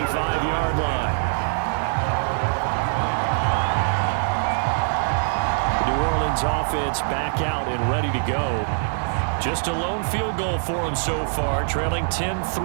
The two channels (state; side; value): silent; left; digital silence